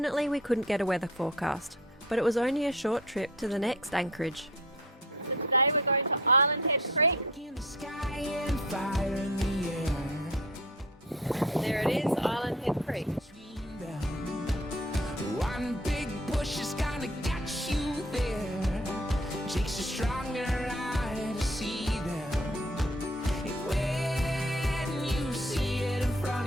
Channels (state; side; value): normal; both; correlation 0.49